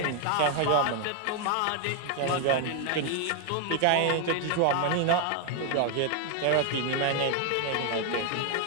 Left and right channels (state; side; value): different; both; correlation 0.00